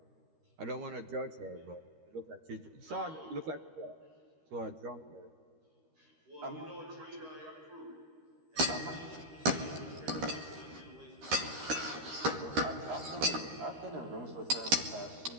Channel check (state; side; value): late; left; 13 ms